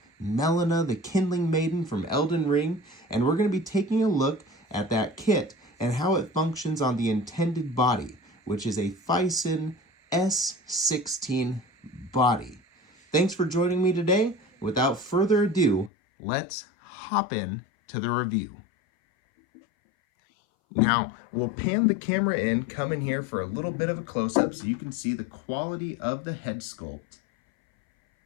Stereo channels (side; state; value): right; drops out; at 15.9 s